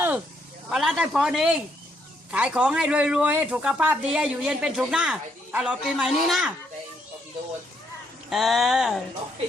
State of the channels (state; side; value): normal; both; correlation 0.74